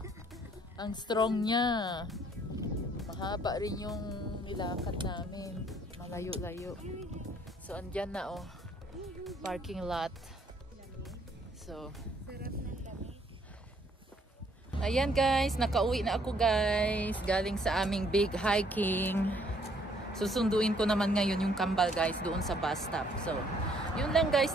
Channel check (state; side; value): normal; both; correlation 0.65